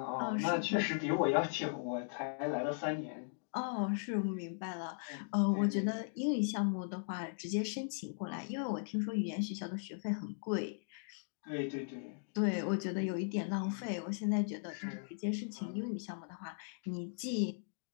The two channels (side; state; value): right; silent; digital silence